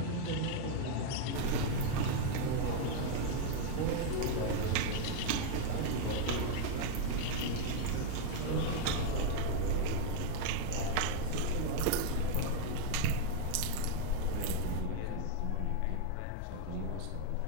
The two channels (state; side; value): different; both; correlation 0.00